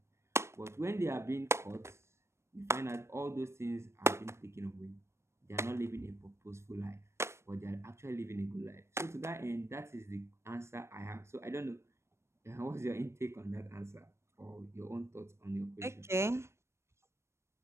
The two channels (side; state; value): left; late; 0.13 ms